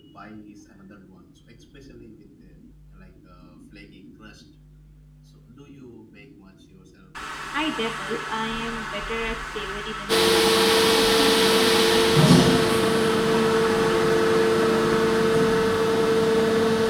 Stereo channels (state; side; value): identical; both; correlation 1.00